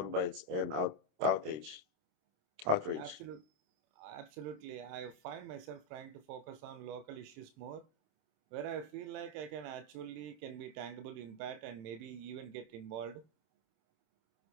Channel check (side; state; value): left; late; 27 ms